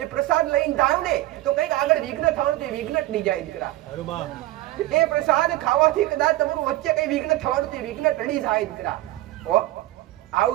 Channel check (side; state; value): left; quieter; 16.8 dB